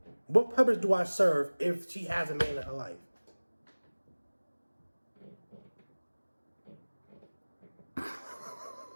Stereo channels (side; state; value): both; inverted; correlation -1.00